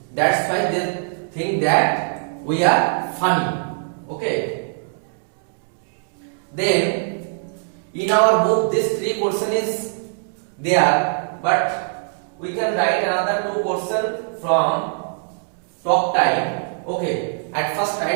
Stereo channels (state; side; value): silent; left; 64 dB below the other